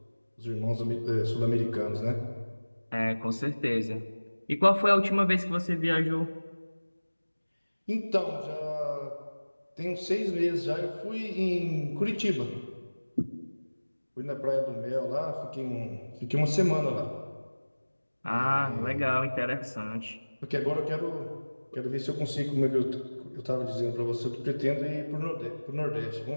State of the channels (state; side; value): inverted; both; correlation -1.00